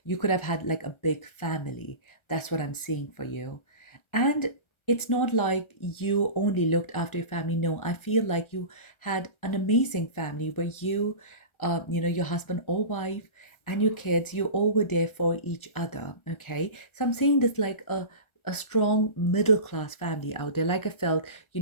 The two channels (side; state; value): right; late; 1.4 ms